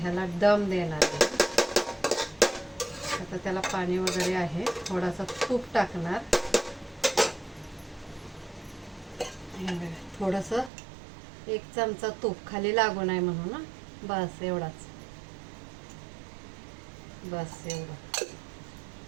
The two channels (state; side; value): drops out; left; at 10.7 s